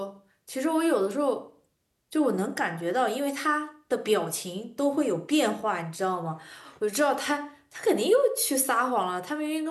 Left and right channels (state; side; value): identical; both; correlation 1.00